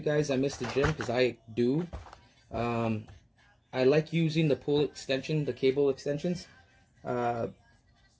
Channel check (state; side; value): identical; both; correlation 1.00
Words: guys. I miss the gym because I do. Um, I like using the pull extension, the cable extensions. Uh,